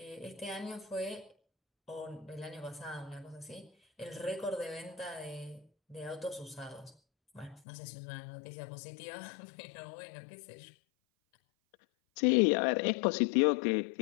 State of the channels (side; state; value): right; drops out; at 7.6 s